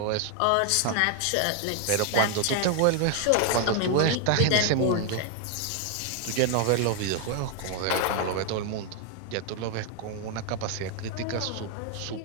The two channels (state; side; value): different; both; correlation 0.00